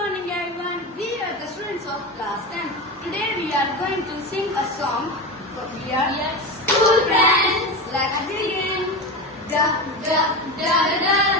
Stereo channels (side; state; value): both; normal; correlation 0.22